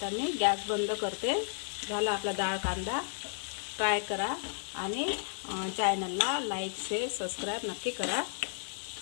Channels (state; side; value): silent; right; 56 dB below the other